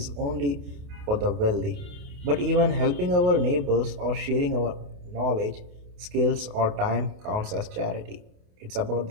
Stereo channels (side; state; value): left; late; 28 ms